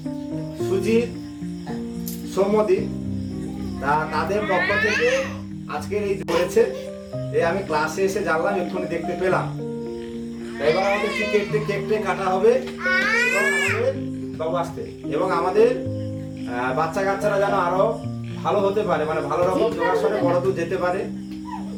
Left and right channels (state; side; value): identical; both; correlation 1.00